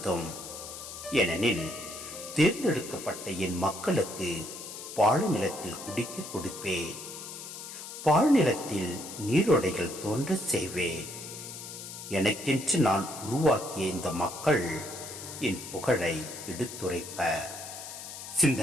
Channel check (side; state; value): left; noise; hiss, 11 dB below the sound